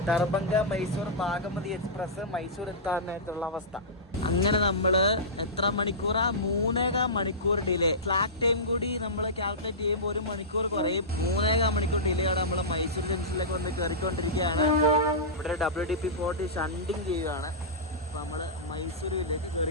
ദർഭംഗ മൈസൂർ ഭാഗമതി എക്സ്പ്രസ് മൈസൂർ എത്താൻ നേരത്തുള്ള അവസ്ഥ. അങ്ങനെ നമ്മൾ എത്ര മണിക്കൂറാ? 3.25 മണിക്കൂർ ഡിലേ. ഫ്ലാഗ് ടൈം കൂടി നമ്മൾ കാൽക്കുലേറ്റ് ചെയ്യുമ്പോൾ 1 മണിക്കൂർ കുറയും. 3.25 മണിക്കൂർ ഡിലേ ആണ്. നമ്മൾ മൈസൂർ ജംഗ്ഷനിലേക്ക് വന്ന് കയറിക്കൊണ്ടിരിക്കുകയാണ്. ഇവിടെ WD-40 ഷണ്ടിങ് ചെയ്യുകയാണ്. അപ്പോൾ നമ്മൾ മൈസൂരിലേക്ക്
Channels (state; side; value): normal; both; correlation -0.16